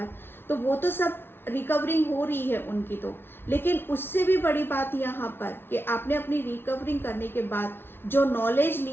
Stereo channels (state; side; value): late; right; 0.11 ms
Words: तो वो तो सब रिकवरिंग हो रही है उनकी तो। लेकिन उससे भी बड़ी बात यहाँ पर कि आपने अपनी रिकवरिंग करने के बाद जो नॉलेज